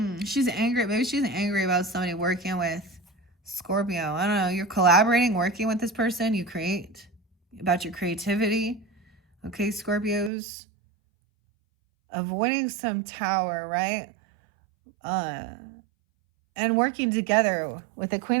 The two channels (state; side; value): drops out; left; at 10.3 s